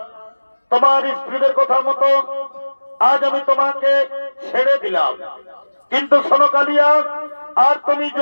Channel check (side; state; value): both; inverted; correlation -1.00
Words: তোমার স্ত্রীদের কথা মতো আজ আমি তোমাকে ছেড়ে দিলাম, কিন্তু শোনো কালিয়া, আর তুমি